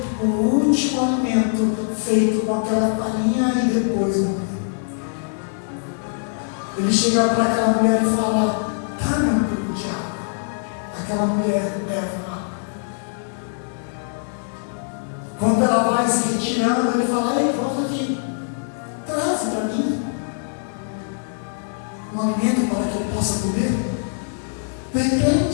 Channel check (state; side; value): silent; right; digital silence